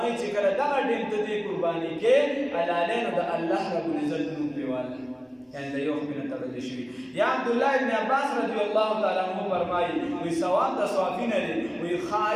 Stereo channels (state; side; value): identical; both; correlation 1.00